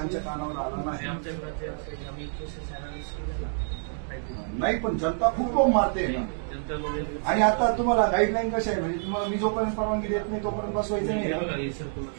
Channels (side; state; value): left; silent; digital silence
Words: कानावर आला नाही. नाही पण जनता खूप बोंब मारते ना. आणि आता तुम्हाला गाईडलाईन कशा आहे, म्हणजे तुम्हाला मी जोपर्यंत परवानगी देत नाही तोपर्यंत बसवायचं नाही.